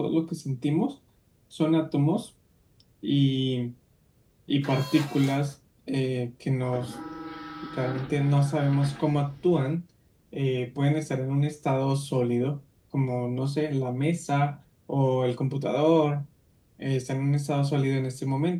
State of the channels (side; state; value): both; identical; correlation 1.00